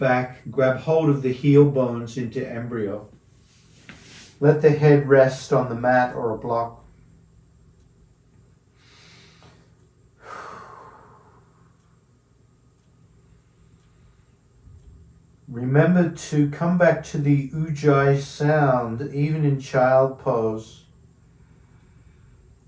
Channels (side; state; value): both; identical; correlation 1.00